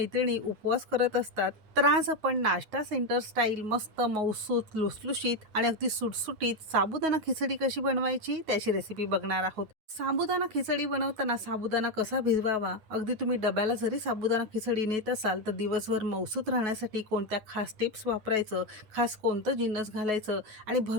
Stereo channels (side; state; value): left; late; 9.4 ms